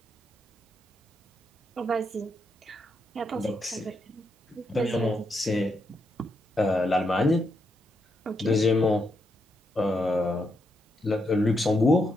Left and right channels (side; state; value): both; normal; correlation 0.81